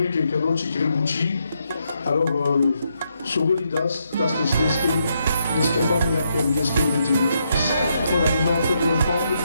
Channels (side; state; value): both; inverted; correlation -0.79